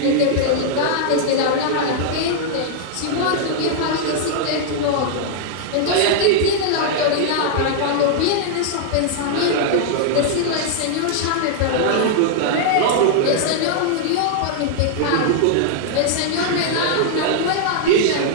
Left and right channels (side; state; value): both; different; correlation -0.01